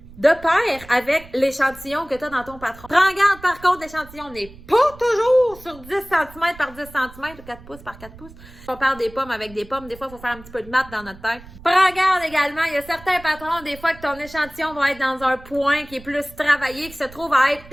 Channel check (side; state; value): right; noise; rumble, 20 dB below the sound